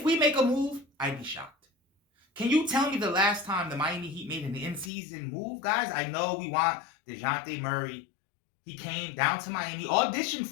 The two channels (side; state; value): right; drops out; at 4.9 s